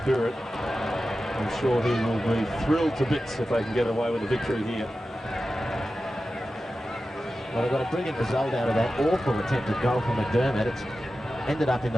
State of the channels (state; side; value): normal; both; correlation 0.93